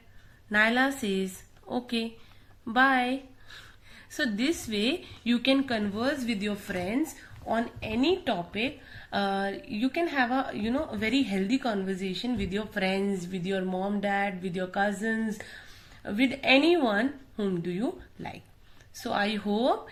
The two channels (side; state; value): both; identical; correlation 1.00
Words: Naila says, okay, bye. So this way you can converse with your friends on any topic. You can have a very healthy conversation with your friends, with your mom, dad, with your cousins, with anyone whom do you like. So I hope